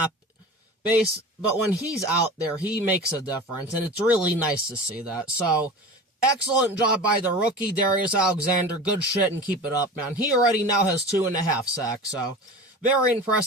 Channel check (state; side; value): normal; both; correlation 0.34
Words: but when he's out there, he makes a difference, and it's really nice to see that. So, excellent job by the rookie, Darius Alexander. Good shit, and keep it up, man. He already now has 2.5 sacks, so very